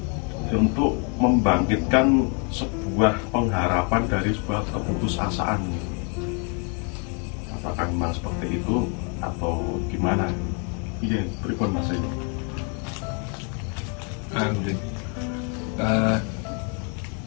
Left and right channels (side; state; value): right; quieter; 37.1 dB